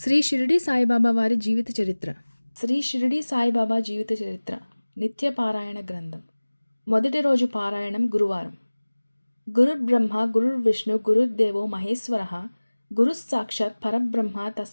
షిరిడి సాయిబాబా వారి జీవిత చరిత్ర. శ్రీ షిరిడి సాయిబాబా జీవిత చరిత్ర నిత్య పారాయణ గ్రంథం. మొదటి రోజు పారాయణం గురువారం. గురుర్బ్రహ్మ గురుర్విష్ణు గురుర్దేవో మహేశ్వరః గురుస్సాక్షాత్ పరబ్రహ్మ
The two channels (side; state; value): both; inverted; correlation -1.00